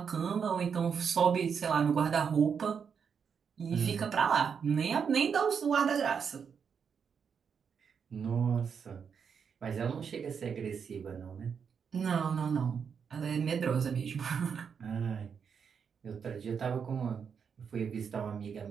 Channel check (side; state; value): left; quieter; 6.7 dB